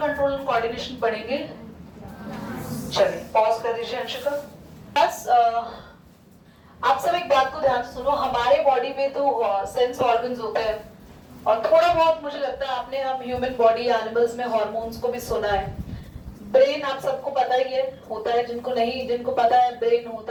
एंड कोऑर्डिनेशन पढ़ेंगे। चलिए पॉज कर दीजिए अंशिका। बस आप सब एक बात को ध्यान से सुनो, हमारे बॉडी में तो सेंस ऑर्गन्स होते हैं और थोड़ा बहुत मुझे लगता है आपने हम ह्यूमन बॉडी एनिमल्स में हार्मोन्स को भी सुना है। ब्रेन आप सबको पता ही है होता है, जिनको नहीं, जिनको पता है ब्रेन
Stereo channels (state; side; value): identical; both; correlation 1.00